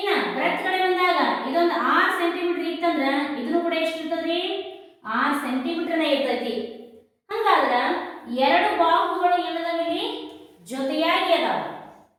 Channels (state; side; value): identical; both; correlation 1.00